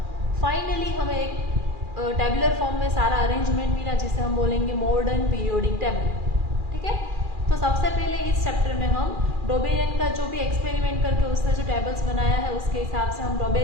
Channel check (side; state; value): left; late; 2.4 ms